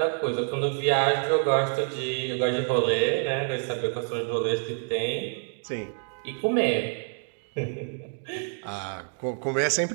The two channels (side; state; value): left; silent; 60 dB below the other